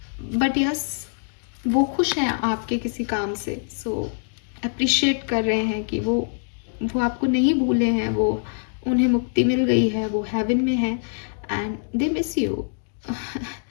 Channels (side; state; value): right; silent; digital silence